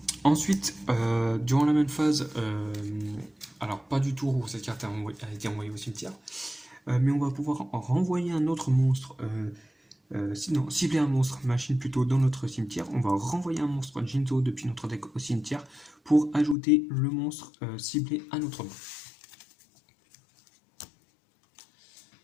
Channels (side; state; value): right; drops out; at 16.6 s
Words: Ensuite, durant la même phase, alors pas du tour où cette carte a été envoyée au cimetière, mais on va pouvoir renvoyer un autre monstre, sinon cibler un monstre machine plutôt dans notre cimetière. On va renvoyer un monstre Jinzo depuis notre deck au cimetière pour ajouter le monstre ciblé à notre main.